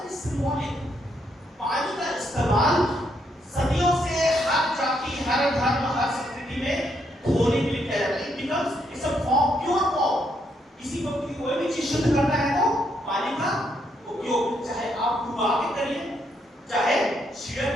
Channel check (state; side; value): normal; both; correlation 0.76